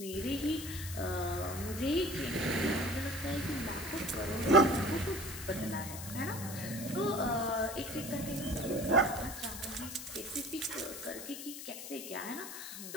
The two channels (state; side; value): noise; left; hiss, 9 dB below the sound